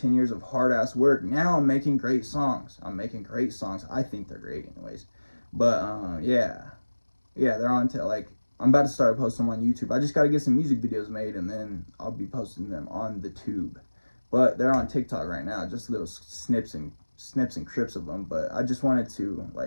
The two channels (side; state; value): both; inverted; correlation -1.00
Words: years of hard ass work, now I'm making great songs. I think they're great anyways. But yeah, they're on to like, I'm about to start posting them on YouTube. I just got to get some music videos made, and then I'll be posting them on the tube. But they're on TikTok right now, just little snips and crips of them. But I just wanted to